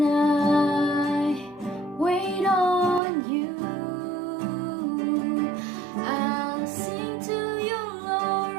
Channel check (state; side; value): drops out; left; at 3.0 s